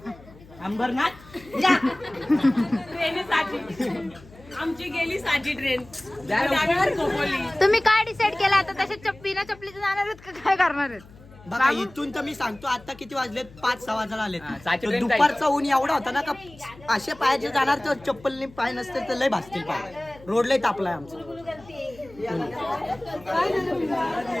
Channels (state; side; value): noise; left; hum, 22 dB below the sound